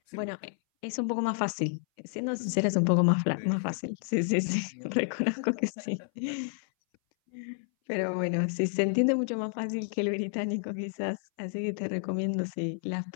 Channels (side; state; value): right; silent; 58 dB below the other